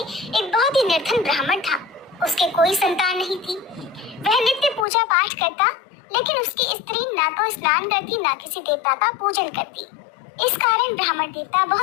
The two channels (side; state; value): right; drops out; at 4.9 s